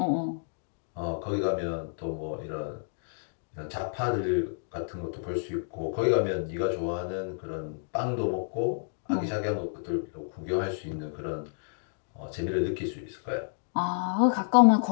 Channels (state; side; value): silent; right; digital silence